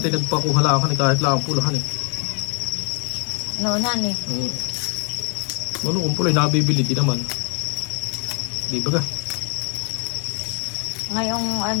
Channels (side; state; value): right; quieter; 36.1 dB